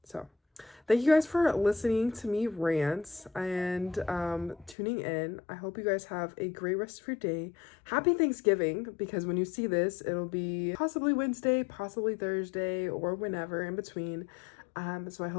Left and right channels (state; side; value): drops out; right; at 4.8 s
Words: So thank you guys for listening to me rant and tuning in. I hope you guys have a great rest of your day. Happy Thanksgiving, because when you see this, it'll be possibly Wednesday, possibly Thursday, or whenever in between. So I